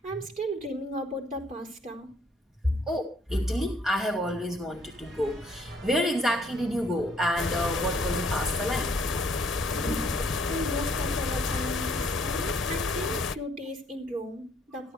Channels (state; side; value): normal; both; correlation 0.65